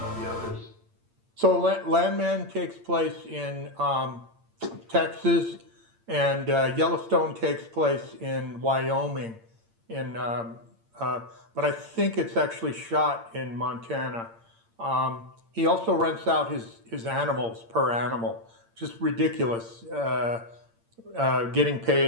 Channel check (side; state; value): left; late; 8.8 ms